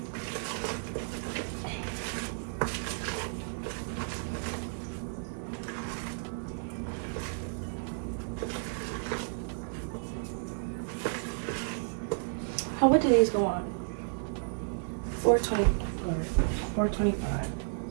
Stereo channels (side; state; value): left; silent; digital silence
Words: Oh, what did these go on? 420 or 425.